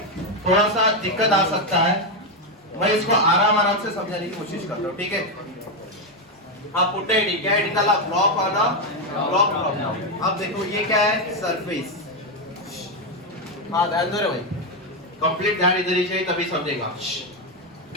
थोड़ा सा दिक्कत आ सकता है, मैं इसको आराम से समझाने की कोशिश करता हूँ, ठीक है। आप पुट आईडी क्या आईडी डाला, ब्लॉक वाला ब्लॉक ब्लॉक। अब देखो ये क्या है, सरफेस। हाँ ध्यान दो रे भाई, कंप्लीट ध्यान इधर ही चाहिए तभी समझेगा।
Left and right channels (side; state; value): both; normal; correlation 0.06